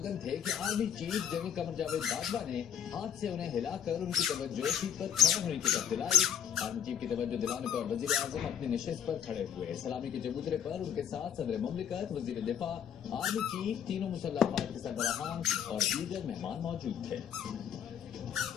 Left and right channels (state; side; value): quieter; right; 8.9 dB